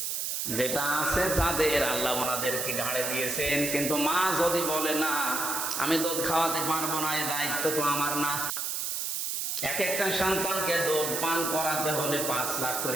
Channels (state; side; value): noise; right; hiss, 1 dB below the sound